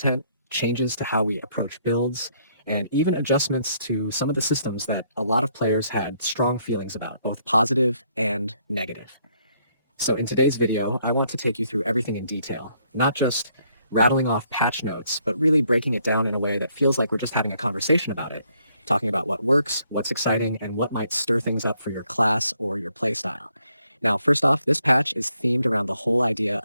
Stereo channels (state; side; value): inverted; both; correlation -0.70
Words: changes to how we approach builds, and even adjustments to some of the systems that a lot of players had strong feelings about, both positive and negative. So in today's video, I want to take you through everything in detail, not just rattling off patch notes, but really breaking it down in a way that feels like we're just having a conversation about it, talking about what works, what's exciting, and what might stir things up for your class or your playstyle. Now, first off, this patch is themed around the whole idea